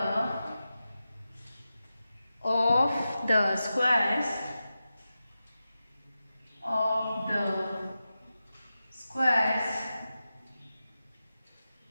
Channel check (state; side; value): inverted; both; correlation -0.92